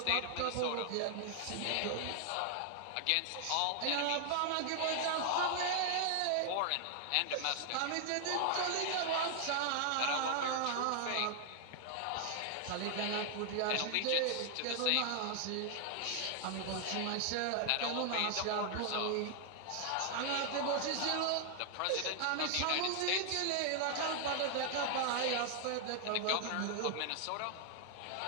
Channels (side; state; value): both; different; correlation 0.00